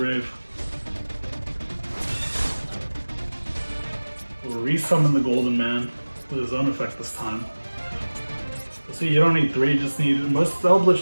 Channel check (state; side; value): inverted; both; correlation -1.00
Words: We'll resummon the Golden Man with his own effect this time. So see, you don't need 3, you just need... Most